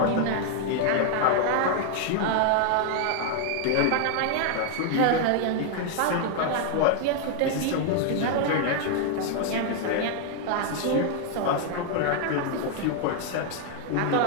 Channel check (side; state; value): both; different; correlation 0.00